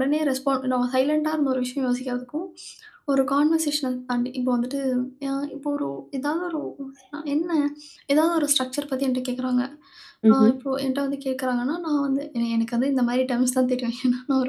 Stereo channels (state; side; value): identical; both; correlation 1.00